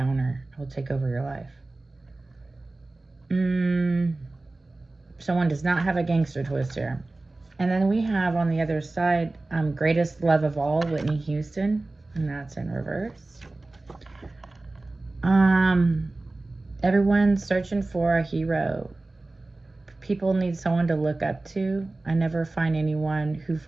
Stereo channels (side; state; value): left; quieter; 3.0 dB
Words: It will take over your life. Someone does not have a gangster twist here. And then we have on the other side, greatest love of all, Whitney Houston, and that's in reverse. Everyone's searching for a hero. People need someone to look up to. I never find anyone who